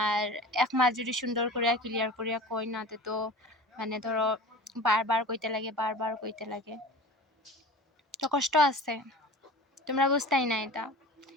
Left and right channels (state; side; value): normal; both; correlation 0.37